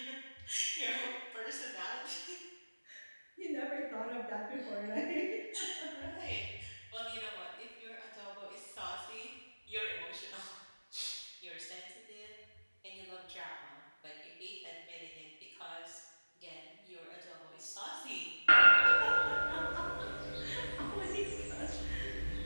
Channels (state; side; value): inverted; both; correlation -1.00